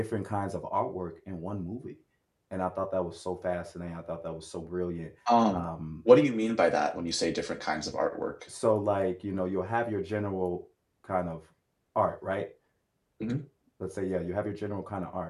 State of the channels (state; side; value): identical; both; correlation 1.00